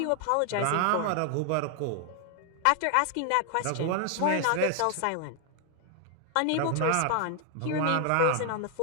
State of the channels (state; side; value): different; both; correlation 0.00